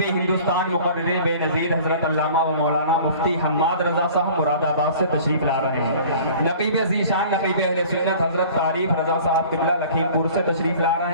ہندوستان مقرر بے نظیر حضرت علامہ و مولانا مفتی حماد رضا صاحب مراد آباد سے تشریف لا رہے ہیں۔ نقیب ذیشان نقیب اہل سنت حضرت تعریف رضا صاحب قبلہ لکھیم پور سے تشریف لا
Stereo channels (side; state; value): both; inverted; correlation -0.46